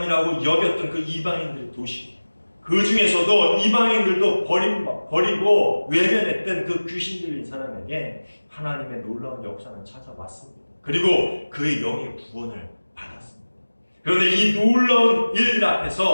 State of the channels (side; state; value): both; inverted; correlation -1.00